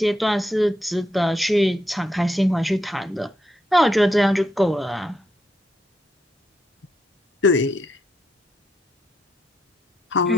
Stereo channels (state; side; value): normal; both; correlation 0.80